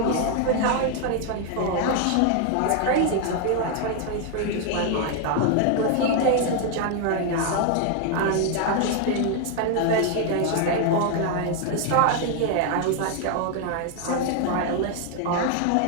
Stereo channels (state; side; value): different; both; correlation 0.00